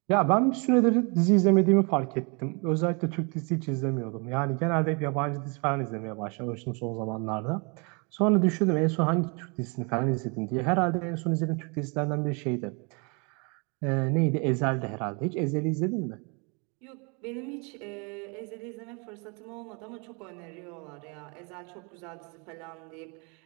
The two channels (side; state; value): left; quieter; 32.9 dB